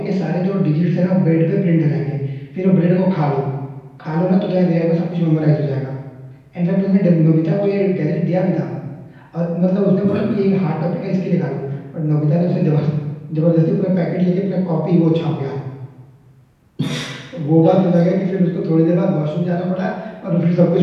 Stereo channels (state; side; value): identical; both; correlation 1.00